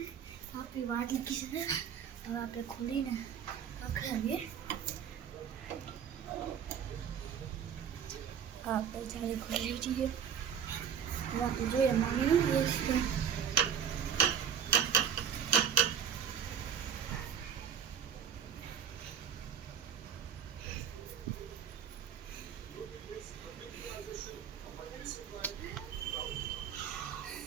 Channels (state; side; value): quieter; left; 8.1 dB